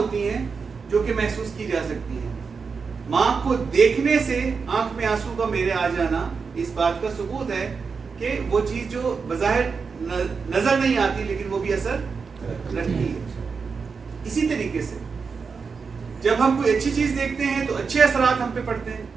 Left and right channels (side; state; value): left; quieter; 5.3 dB